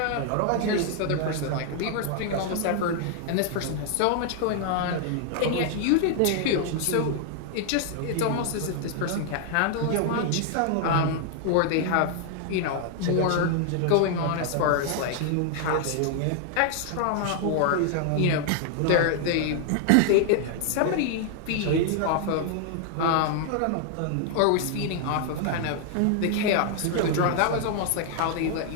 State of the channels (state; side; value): different; both; correlation 0.00